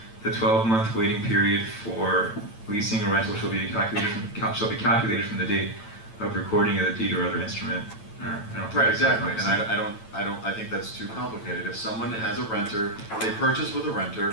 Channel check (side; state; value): right; late; 8.9 ms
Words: the 12-month waiting period for leasing or rental shall be calculated from the date of recording of the deed or other instrument. Right, exactly. And I think that's too complicated. If someone has a renter, they purchase with a